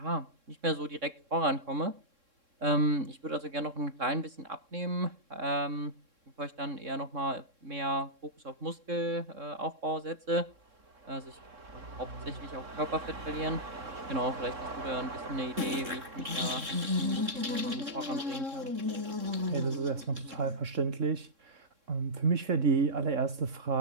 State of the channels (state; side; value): late; left; 3.7 ms